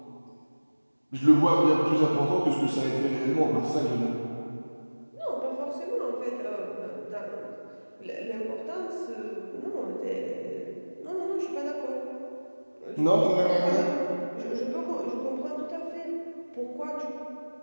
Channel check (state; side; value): inverted; both; correlation -1.00